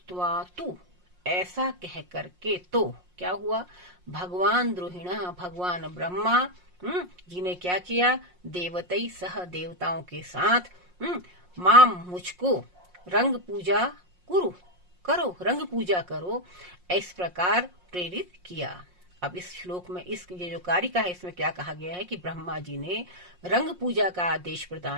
तु, ऐसा कह करके, तो क्या हुआ? भगवान द्रोहिणा, भगवान ब्रह्मा जी ने क्या किया? देवतई सह, देवताओं के साथ, माम मुझको रंग पूजा करो, रंग पूजा करो, इस प्रकार प्रेरित किया। अब इस श्लोक में ये जो कारिका है इसमें क्या कहा गया है कि ब्रह्मा जी ने रंग पूजा का आदेश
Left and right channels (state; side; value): late; left; 5.6 ms